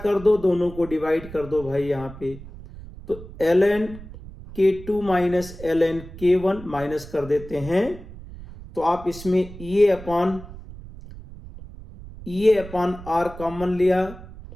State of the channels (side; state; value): right; noise; rumble, 15 dB below the sound